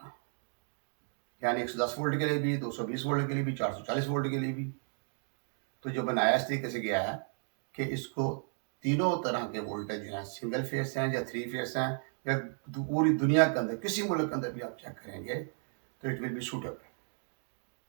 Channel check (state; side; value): silent; left; 55 dB below the other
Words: यानी 110 वोल्ट के लिए भी, 220 वोल्ट के लिए भी, 440 वोल्ट के लिए भी। तो जो बनाया इस तरीके से गया है कि इसको तीनों तरह के वोल्टेज हैं, सिंगल फेस हैं या 3 फेस हैं या पूरी दुनिया के अंदर किसी मुल्क के अंदर भी आप चेक करेंगे तो इट विल बी सूटेबल।